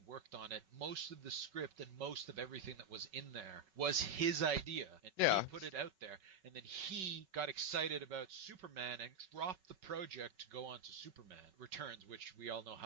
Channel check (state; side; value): late; left; 5.3 ms